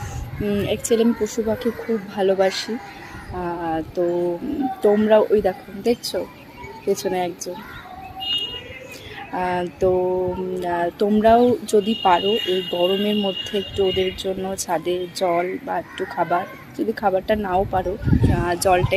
অ্যাকচুয়ালি আমি পশু পাখি খুব ভালোবাসি। তো তোমরা ওই দেখছো পেছনে একজন, তো তোমরাও যদি পারো এই গরমের মধ্যে একটু ওদের জন্য ছাদে জল বা একটু খাবার, যদি খাবারটা নাও পারো জলটা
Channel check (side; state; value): both; identical; correlation 1.00